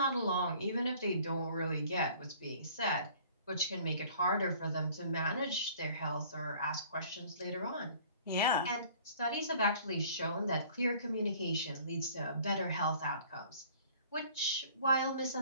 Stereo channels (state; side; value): inverted; both; correlation -0.52